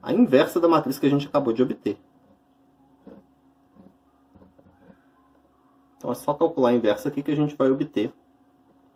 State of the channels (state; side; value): identical; both; correlation 1.00